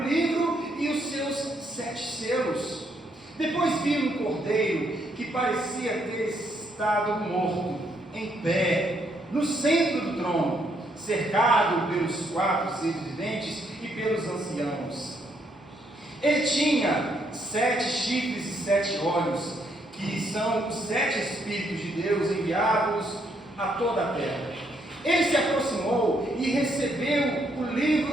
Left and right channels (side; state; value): both; normal; correlation 0.74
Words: livro e os seus 7 selos. Depois vi um cordeiro que parecia ter estado morto, em pé, no centro do trono, cercado pelos 4 seres viventes e pelos anciãos. Ele tinha 7 chifres e 7 olhos, que são os 7 Espíritos de Deus enviados a toda a terra. Ele se aproximou e recebeu o